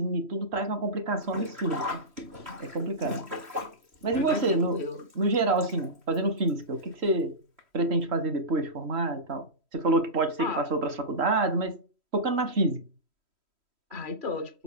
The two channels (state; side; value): late; left; 3.1 ms